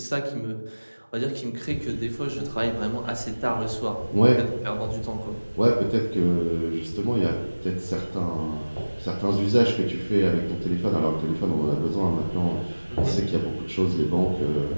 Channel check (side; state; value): both; inverted; correlation -1.00